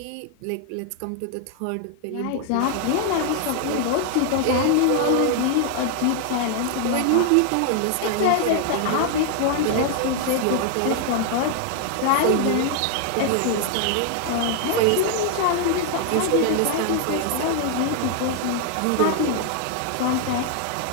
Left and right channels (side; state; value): both; different; correlation 0.00